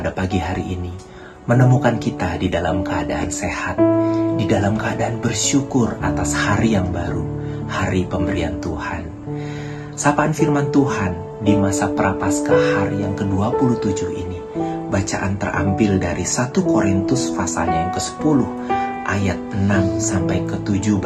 pagi hari ini, menemukan kita di dalam keadaan sehat, di dalam keadaan bersyukur atas hari yang baru, hari pemberian Tuhan. Sapaan firman Tuhan di masa Prapaskah hari yang ke-27 ini, bacaan terambil dari 1 Korintus pasalnya yang ke-10 ayat 6 sampai ke-7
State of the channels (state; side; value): identical; both; correlation 1.00